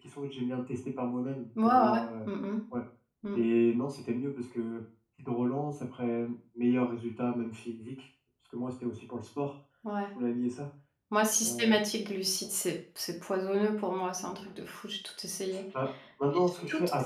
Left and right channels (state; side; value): identical; both; correlation 1.00